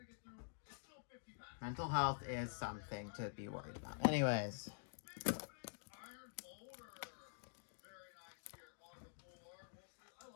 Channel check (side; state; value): right; silent; digital silence